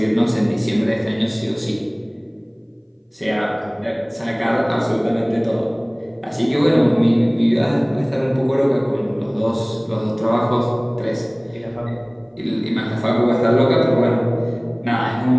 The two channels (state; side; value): identical; both; correlation 1.00